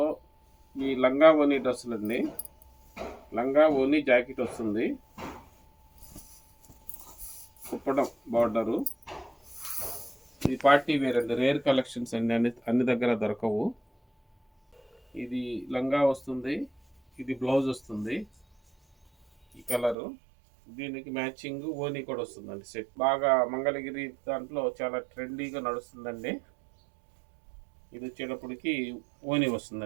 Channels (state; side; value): drops out; left; at 20.0 s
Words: ఈ లంగా ఓనీ డ్రెస్సులు అండి. లంగా ఓనీ జాకెట్ వస్తుంది, కుప్పడం బార్డరు. ఇది పార్టీ వేర్ అండి, రేర్ కలెక్షన్స్ అండి, అన్ని దగ్గర దొరకవు. ఇది లంగా వస్తుంది, ఇది బ్లౌజ్ వస్తుంది. ఈ కలరు దీనికి మ్యాచింగ్ ఓనీ కూడా వస్తుందండి. సెట్ బాగా మంగళగిరి దాంట్లో చాలా ట్రెండీగా నడుస్తుందండి. ఇది వచ్చేటప్పటికి ఓనీ